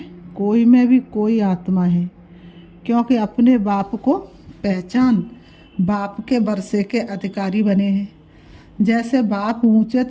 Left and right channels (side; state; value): both; identical; correlation 1.00